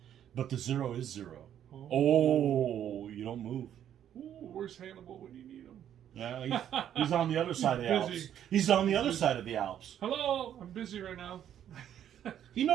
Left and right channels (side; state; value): left; quieter; 10.2 dB